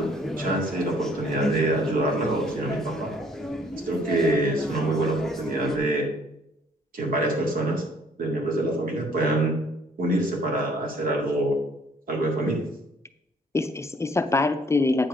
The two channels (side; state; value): both; normal; correlation 0.61